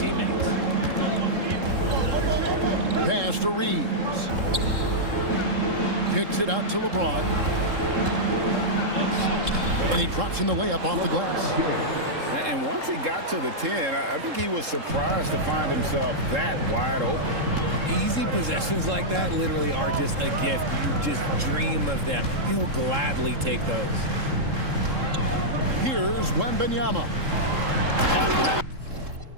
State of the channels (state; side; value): late; left; 3.7 ms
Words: Pass to Reeves. Kicks it out to LeBron. And he drops in the layup off the glass. And once he got to the 10, I think he was surprised to find himself that wide open. Easy possessions like that literally are just a gift. You just dream of them. He'll gladly take those. Here's Wembanyama.